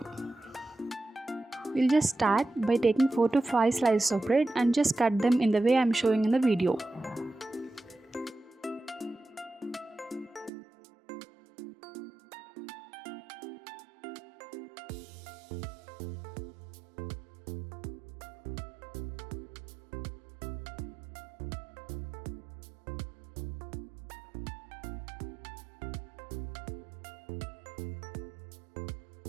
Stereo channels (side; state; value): left; drops out; at 10.5 s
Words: We'll just start by taking 4 to 5 slices of bread and just cut them in the way I'm showing in the video.